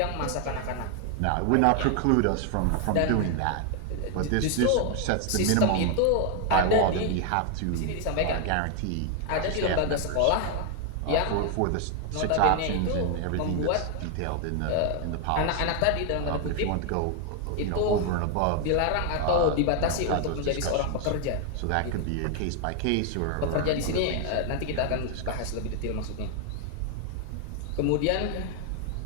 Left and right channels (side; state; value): both; different; correlation 0.00